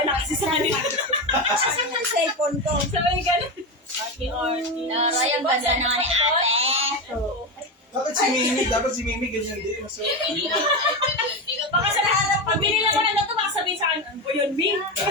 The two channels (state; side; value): normal; both; correlation 0.16